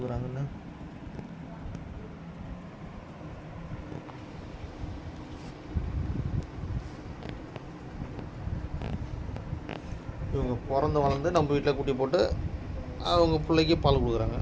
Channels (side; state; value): both; identical; correlation 1.00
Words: இவங்க பிறந்து வளர்ந்து நம்ம வீட்டில் குட்டி போட்டு அவங்க பிள்ளைக்கு பால் கொடுக்குறாங்க.